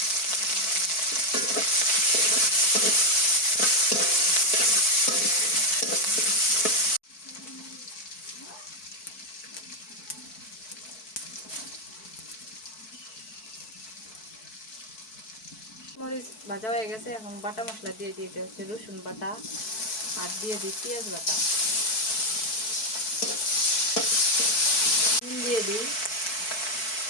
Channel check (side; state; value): right; late; 4.6 ms